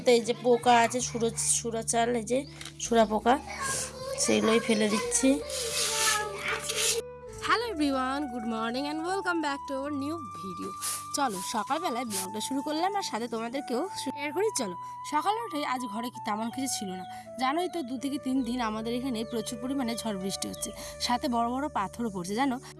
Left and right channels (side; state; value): both; identical; correlation 1.00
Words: এই যে পোকা আছে, সুরা চাল, এই যে সুরা পোকা, সেগুলোই ফেলে দিচ্ছি। Hello everyone, good morning and welcome back to our new video. চলো সকালবেলায় ব্লগটা শুরু করলাম আর সাথে তোমাদেরকেও শেয়ার করি। চলো সকালে উঠে আজ ঘরে কি তেমন কিছু ছিল না, জানোই তো 2 থেকে 3 দিন আমাদের এখানে প্রচুর পরিমাণে ঝড় বৃষ্টি হচ্ছে, সাথে বড় বড় পাথরও পড়ছে। জানো